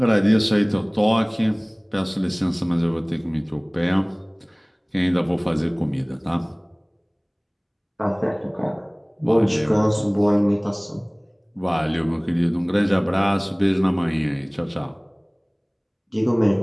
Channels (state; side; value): identical; both; correlation 1.00